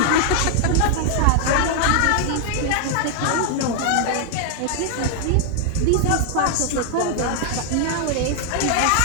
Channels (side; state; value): both; different; correlation 0.00